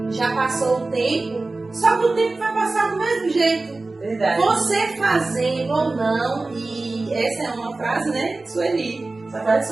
já passou o tempo, só que o tempo vai passar do mesmo jeito. Verdade. Você fazendo ou não, e essa é uma frase, né, Sueli. Essa frase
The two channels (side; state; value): left; quieter; 3.3 dB